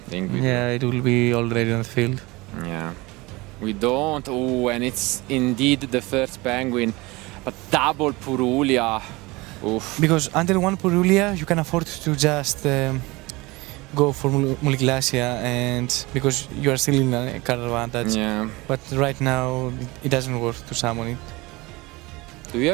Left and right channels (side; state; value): left; quieter; 22.8 dB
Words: think we do. It will be already on the field. Yeah. We don't. Oh, and it's indeed the first Penguin. But double Purulia. Oof. Because under one Purulia, you can afford to just go for Muliglacia, and because you are still in a card advantage. Yeah. But right now, it doesn't work to summon it. Do you